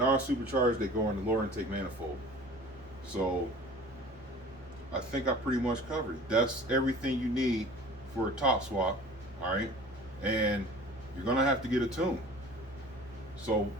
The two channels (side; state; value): both; normal; correlation 0.44